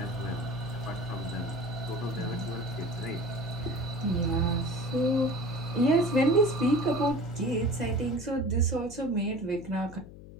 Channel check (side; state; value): left; noise; hum, 16 dB below the sound